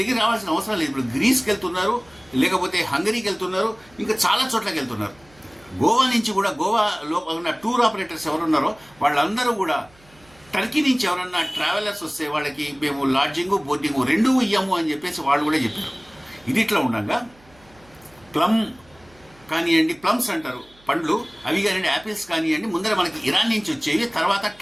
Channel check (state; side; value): noise; right; hum, 28 dB below the sound